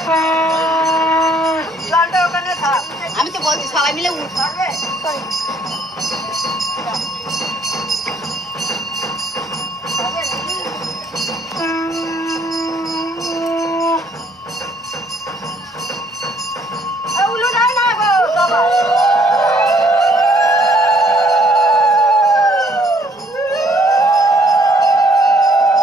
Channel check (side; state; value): both; normal; correlation 0.63